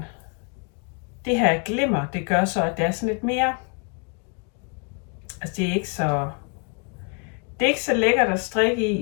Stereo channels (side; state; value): right; quieter; 37.2 dB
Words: Det her glimmer, det gør så, at det er sådan lidt mere. Altså det er ikke så lækkert at strikke